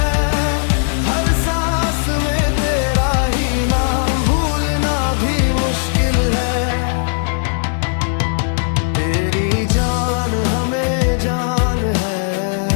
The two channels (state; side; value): silent; right; 57 dB below the other